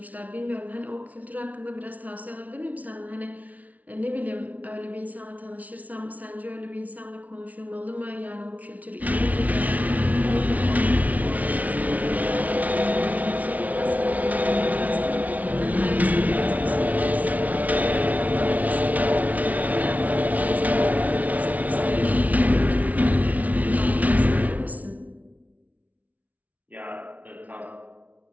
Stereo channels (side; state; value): left; late; 0.072 ms